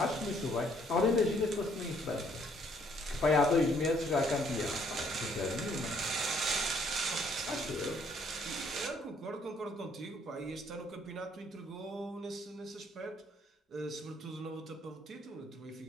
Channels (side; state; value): both; normal; correlation 0.65